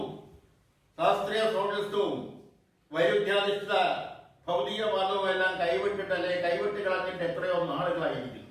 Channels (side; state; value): both; identical; correlation 1.00